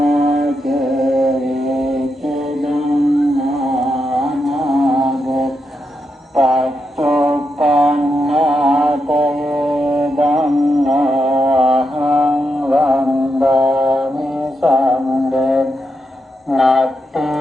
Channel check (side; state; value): both; normal; correlation 0.84